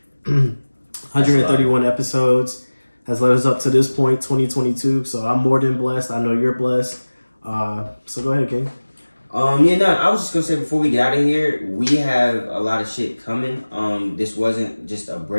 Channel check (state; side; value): inverted; both; correlation -1.00